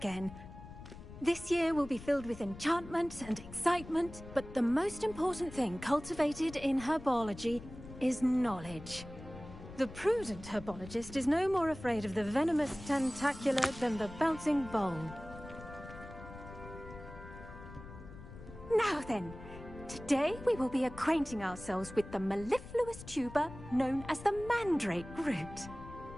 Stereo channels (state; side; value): noise; left; rumble, 14 dB below the sound